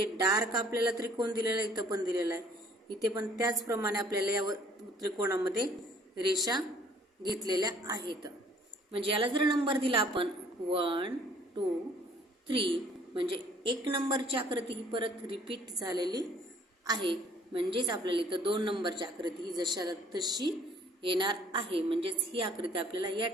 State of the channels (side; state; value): both; normal; correlation 0.58